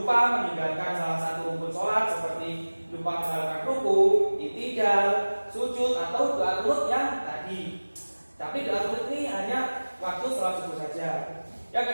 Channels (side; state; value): both; inverted; correlation -1.00